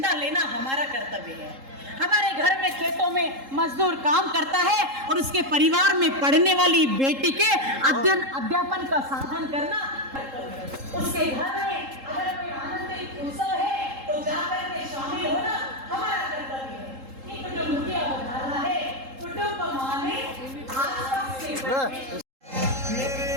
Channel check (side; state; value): left; late; 3.7 ms